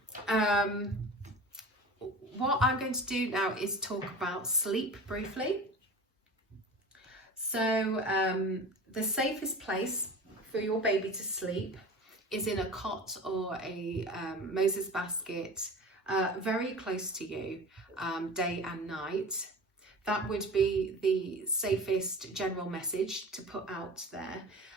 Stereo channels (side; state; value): both; normal; correlation 0.35